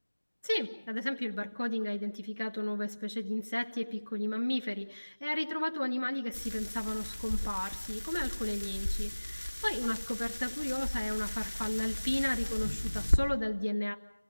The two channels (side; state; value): both; inverted; correlation -1.00